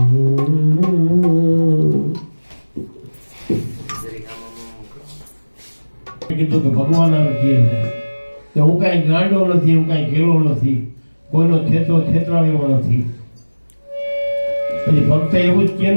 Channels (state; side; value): inverted; both; correlation -1.00